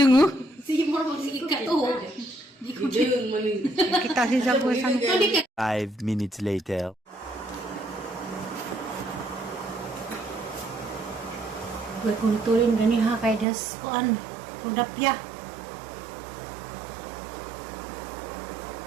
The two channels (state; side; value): drops out; left; at 13.5 s